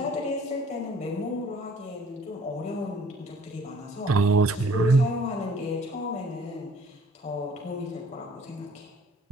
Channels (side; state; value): both; normal; correlation 0.56